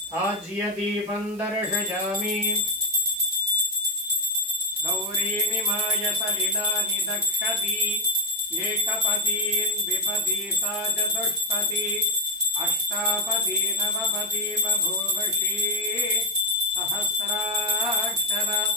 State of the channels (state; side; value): noise; right; hiss, 22 dB below the sound